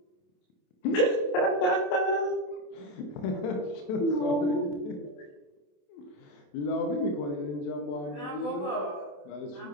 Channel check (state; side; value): late; right; 27 ms